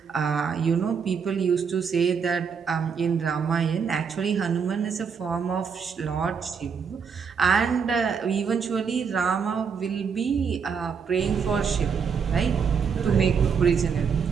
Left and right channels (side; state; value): left; quieter; 6.3 dB